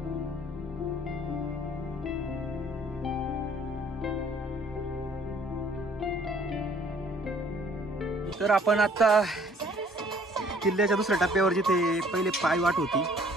तर आपण आता किल्ल्याच्या दुसऱ्या टप्प्यावर, जिथे पहिले पायवाट होती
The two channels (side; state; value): both; normal; correlation 0.57